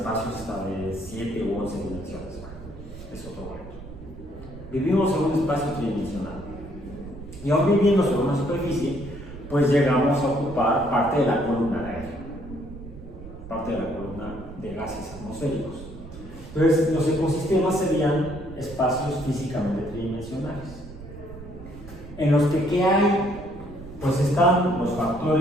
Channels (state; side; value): noise; right; rumble, 15 dB below the sound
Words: hasta de 7 u 11 dimensiones. Es otro cuento. Vivimos en un espacio tridimensional. Y aún viviendo sobre una superficie, pues llegamos a ocupar parte de la columna de aire. atmosféricos. Entonces, los ecosistemas serían espacios físicamente tridimensionales, en los que ¿qué hay? Pues están los